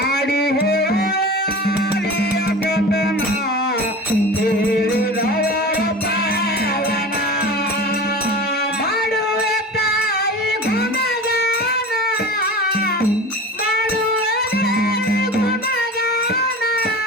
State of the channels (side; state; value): both; normal; correlation 0.33